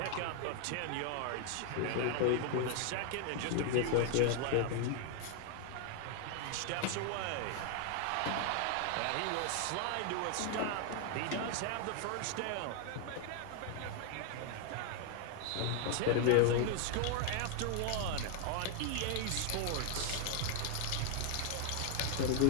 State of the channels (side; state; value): both; different; correlation 0.00